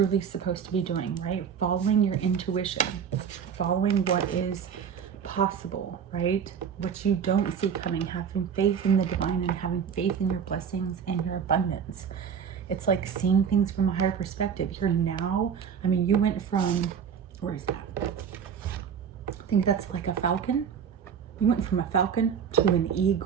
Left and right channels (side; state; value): left; quieter; 7.5 dB